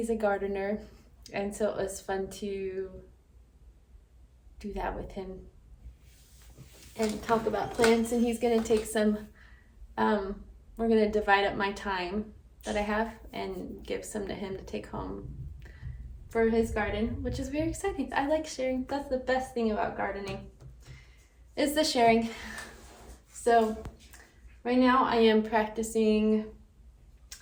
a gardener, and so it was fun to do that with him and talk about plants. And he's going to take some, we're going to divide up my time that I have and give some to him to take home for his garden, which is very exciting. I like sharing. That's the best thing about gardening, is the sharing. So right now I am practicing.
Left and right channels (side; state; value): both; identical; correlation 1.00